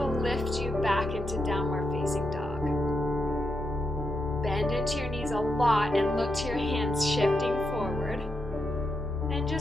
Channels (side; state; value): both; normal; correlation 0.84